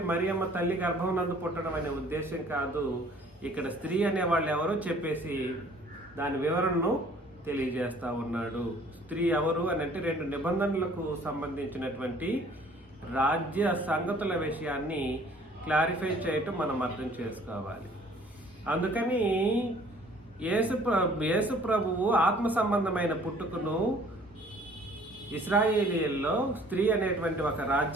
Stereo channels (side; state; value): both; normal; correlation 0.55